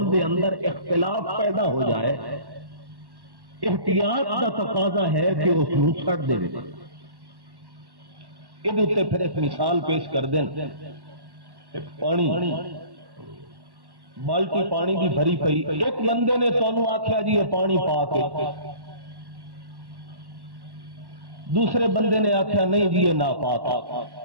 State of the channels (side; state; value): left; late; 1.1 ms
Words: دے اندر اختلاف پیدا ہو جائے احتیاط کا تقاضا ہے کہ اس کو چھڑ دے یہ پھر ایک مثال پیش کر دیں پانی بالٹی پانی کی بھری پئی ایک بندے نے تانوں آکھیا جی یہ پانی پا کے دوسرے بندے نے آکھیا نہیں جی یہ ناپاک